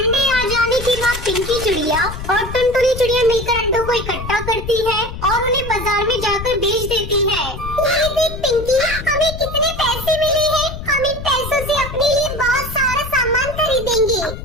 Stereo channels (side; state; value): left; noise; rumble, 9 dB below the sound